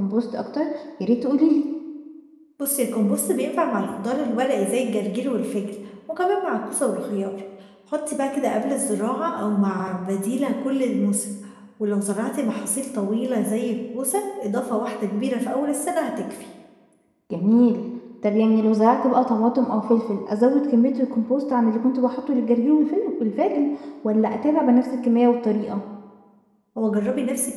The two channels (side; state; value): both; identical; correlation 1.00